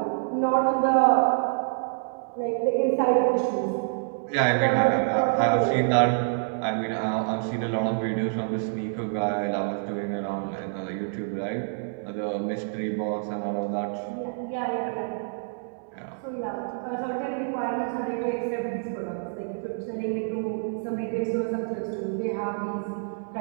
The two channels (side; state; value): left; silent; digital silence